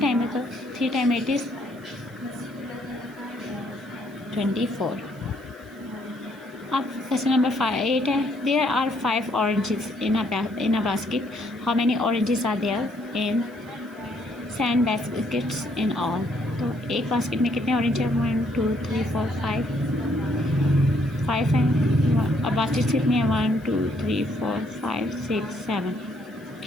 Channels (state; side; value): noise; right; hiss, 29 dB below the sound